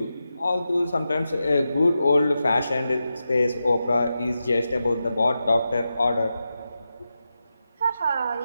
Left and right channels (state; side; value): inverted; both; correlation -0.90